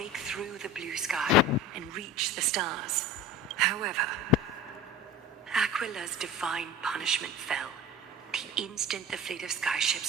through the blue sky and reach the stars. However, Aquila's divine punishment fell the instant the fleet of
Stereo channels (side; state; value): both; normal; correlation 0.35